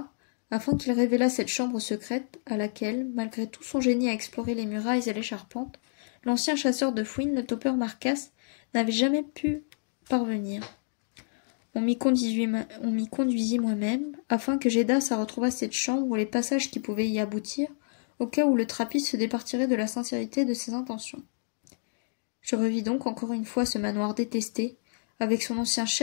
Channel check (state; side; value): silent; right; digital silence